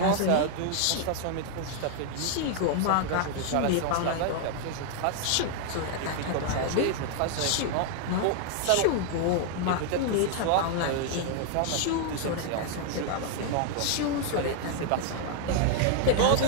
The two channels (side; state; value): both; different; correlation 0.00